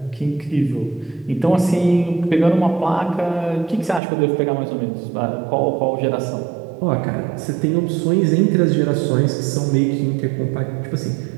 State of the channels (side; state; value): left; drops out; at 4.0 s